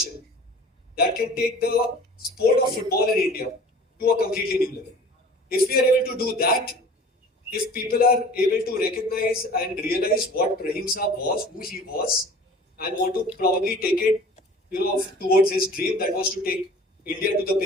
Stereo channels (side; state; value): both; normal; correlation 0.45